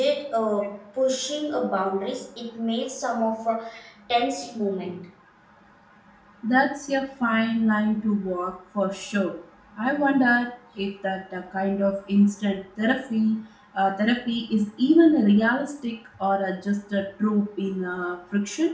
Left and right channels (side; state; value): both; identical; correlation 1.00